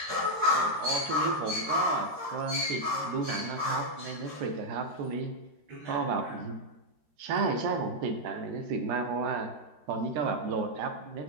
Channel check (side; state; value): left; late; 13 ms